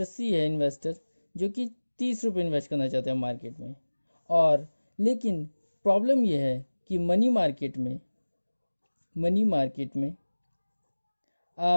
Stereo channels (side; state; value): both; inverted; correlation -1.00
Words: सी है इन्वेस्टर जो कि 30 रुपये इन्वेस्ट करना चाहते हैं मार्केट में। और लेकिन प्रॉब्लम यह है कि मनी मार्केट में